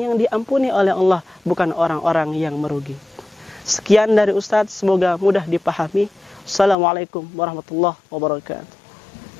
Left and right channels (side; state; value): right; drops out; at 6.8 s